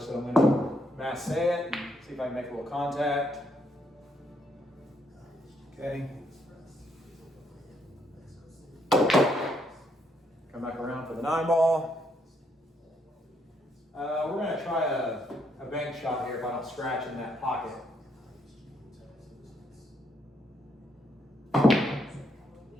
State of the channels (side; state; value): both; normal; correlation 0.74